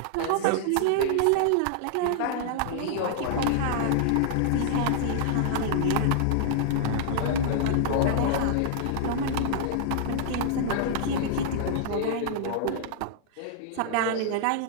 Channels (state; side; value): different; both; correlation -0.01